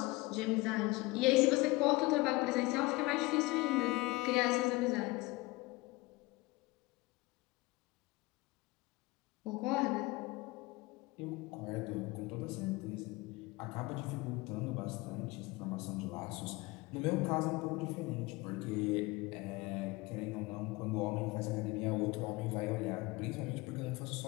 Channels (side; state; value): right; quieter; 22.2 dB